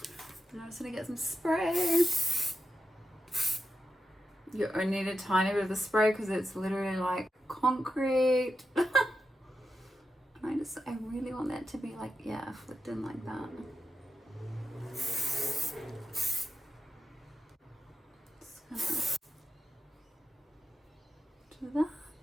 And I'm just gonna get some spray. You only need a tiny bit of the spray because it's literally like concrete. And I really want that to be like, yeah, flicked in like that. Just gonna do that.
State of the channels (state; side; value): normal; both; correlation 0.90